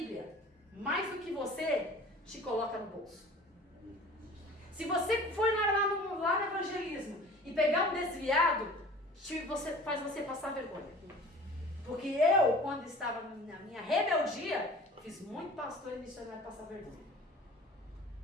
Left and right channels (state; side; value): normal; both; correlation 0.43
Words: mais do que você, te coloca no bolso. Se você for lá no evangelismo e pegar um desviado, faz você passar vergonha. Porque eu, quando estava na minha rebeldia, fiz muito pastor e missionário passar vergonha.